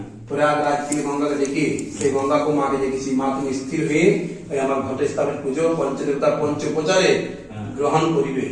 প্রয়াগরাজ থেকে গঙ্গাকে ডেকে সেই গঙ্গাকে মাকে ডেকেছি। মা তুমি স্থির হয়ে ওই আমার ঘটে স্থাপিত পুজো পঞ্চদেবতা পঞ্চোপচারে গ্রহণ করিবে।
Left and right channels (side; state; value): both; identical; correlation 1.00